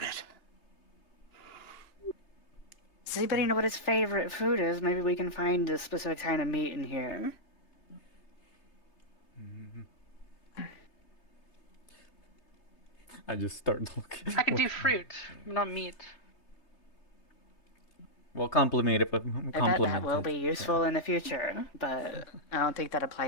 Does anybody know what his favorite food is? Maybe we can find a specific kind of meat in here. I just start looking. I can do fruit, not meat. Well, compliment it, but That compliment will it. be useful in the future, but I don't think that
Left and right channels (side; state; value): right; late; 3.4 ms